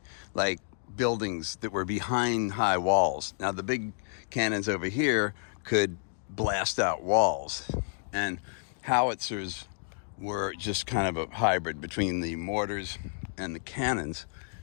like buildings that were behind high walls. Now the big cannons over here could blast out walls, and howitzers were just kind of a hybrid between the mortars and the cannons.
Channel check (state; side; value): silent; right; digital silence